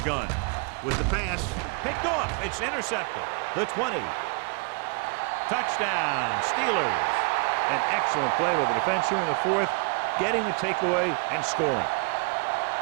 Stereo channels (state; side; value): quieter; left; 33.2 dB